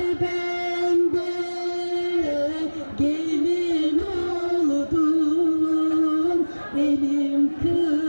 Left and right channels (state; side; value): inverted; both; correlation -1.00